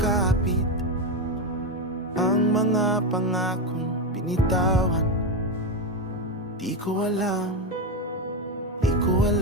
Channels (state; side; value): normal; both; correlation 0.11